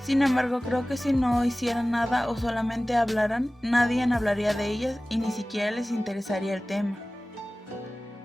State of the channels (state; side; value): normal; both; correlation 0.97